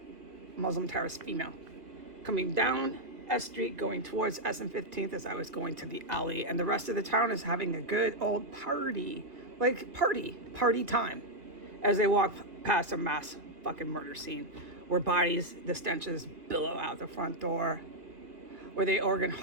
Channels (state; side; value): late; left; 2.1 ms